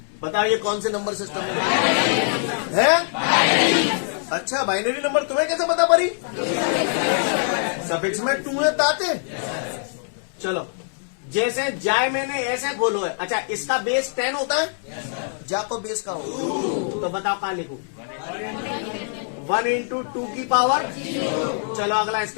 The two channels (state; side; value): silent; right; 63 dB below the other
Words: बताओ ये कौन से नंबर सिस्टम है? अच्छा, बाइनरी नंबर। तुम्हें कैसे पता पड़ी? सफिक्स में 2 है ताते। चलो जैसे जाए मैंने ऐसे खोलो है। अच्छा, इसका बेस 10 होता है? जा को बेस का हो तो बताओ कहां लिखू? 1 इंटू 2 की पावर। चलो अगला